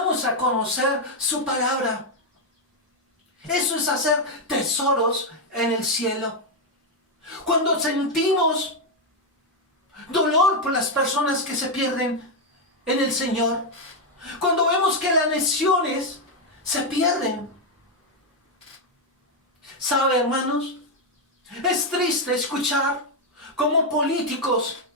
a conocer su palabra. Eso es hacer tesoros en el cielo. Cuando sentimos dolor por las personas que se pierden en el Señor. Cuando vemos que las naciones se pierden. ¿Sabe, hermanos? Es triste escuchar cómo políticos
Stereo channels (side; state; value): both; normal; correlation 0.02